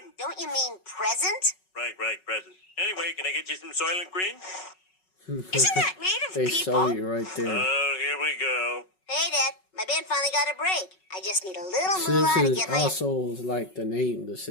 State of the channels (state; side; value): late; right; 5.4 ms